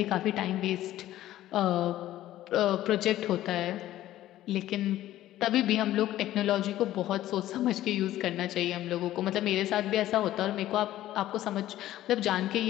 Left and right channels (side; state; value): right; quieter; 13.9 dB